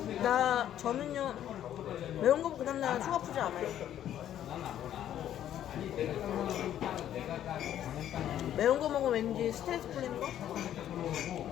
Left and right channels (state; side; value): quieter; right; 11.1 dB